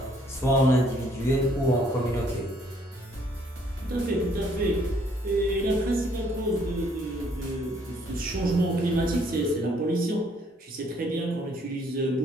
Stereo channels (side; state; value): both; normal; correlation 0.65